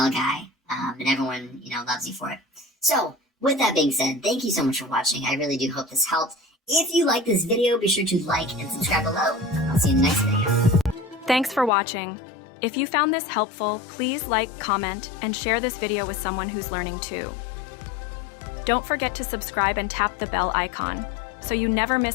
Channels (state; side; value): drops out; right; at 11.7 s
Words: guy, and everyone, loves you for it. So, with that being said, thank you so much for watching. I really do hope this helped. If you like this video, be sure to like and subscribe below. I'll see you in the next video. Thanks for watching. If you found this helpful, please like, comment, and share this video with someone who's learning too. Don't forget to subscribe and tap the bell icon so you never